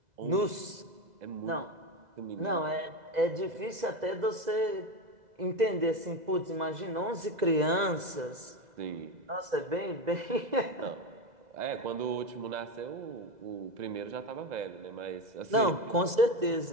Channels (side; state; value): left; late; 2.0 ms